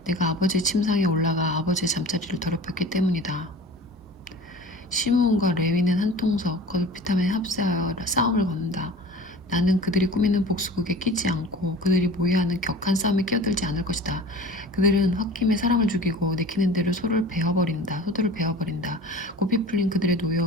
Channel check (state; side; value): normal; both; correlation 0.40